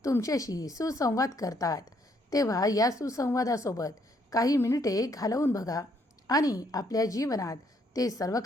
तुमच्याशी सुसंवाद करतात. तेव्हा या सुसंवादासोबत काही मिनिटे घालवून बघा आणि आपल्या जीवनात ते सर्व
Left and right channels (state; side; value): normal; both; correlation 0.70